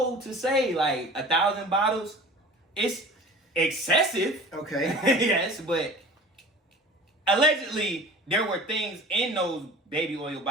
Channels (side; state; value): both; normal; correlation 0.40